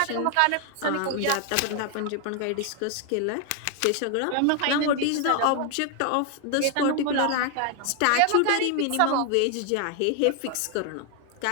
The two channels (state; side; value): different; both; correlation 0.00